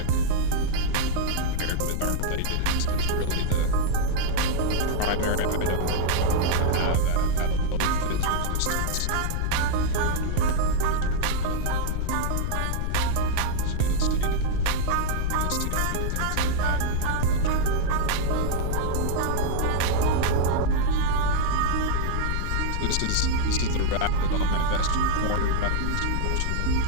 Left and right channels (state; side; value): different; both; correlation -0.01